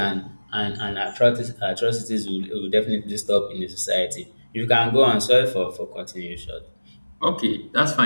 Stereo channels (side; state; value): both; inverted; correlation -1.00